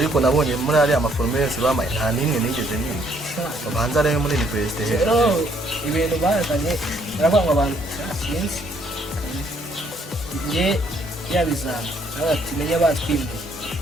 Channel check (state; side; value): normal; both; correlation 0.67